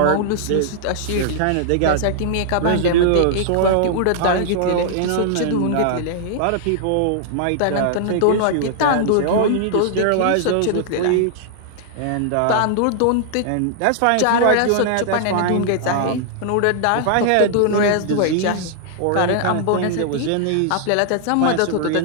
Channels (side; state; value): both; different; correlation -0.01